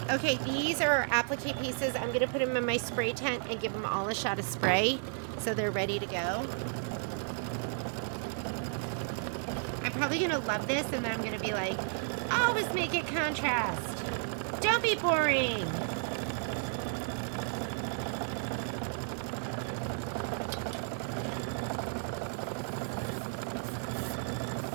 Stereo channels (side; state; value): left; silent; 56 dB below the other